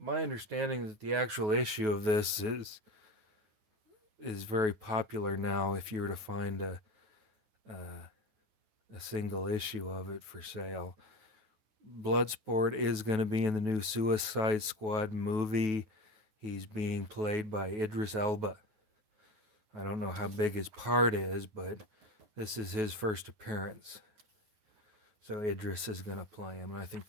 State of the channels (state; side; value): late; left; 9.3 ms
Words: understanding that the actual issue of this is very popular now. If you were to find a single issue of it for sale, Bloodsport is going to be in the new Suicide Squad movie. He's being played by Idris Elba. I don't know how big his part is, but this is his first appearance. So Idris is going to play him, and I think